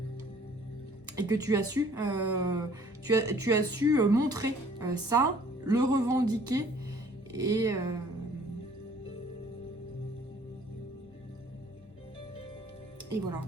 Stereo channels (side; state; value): both; normal; correlation 0.56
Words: Et que tu as su, tu as su montrer ça, le revendiquer et voilà.